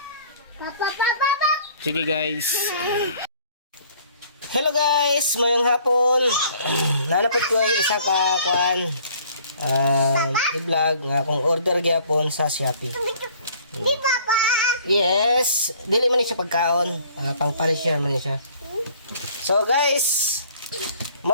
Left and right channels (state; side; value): inverted; both; correlation -0.55